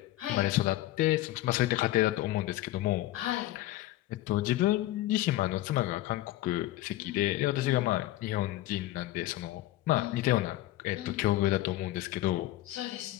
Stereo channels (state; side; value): quieter; right; 15.8 dB